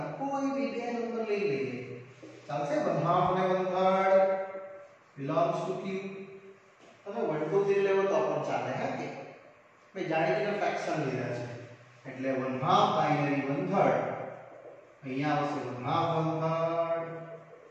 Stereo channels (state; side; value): identical; both; correlation 1.00